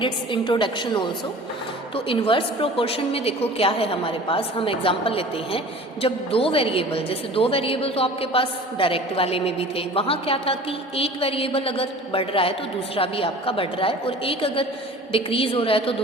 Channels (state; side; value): normal; both; correlation 0.43